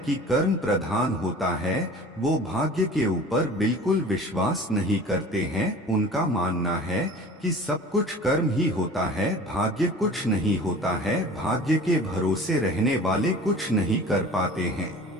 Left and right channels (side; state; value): both; normal; correlation 0.42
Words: कि कर्म प्रधान होता है, वो भाग्य के ऊपर बिल्कुल विश्वास नहीं करते हैं। उनका मानना है कि सब कुछ कर्म ही होता है, भाग्य कुछ नहीं होता है, भाग्य के भरोसे रहने वाले कुछ नहीं कर पाते हैं।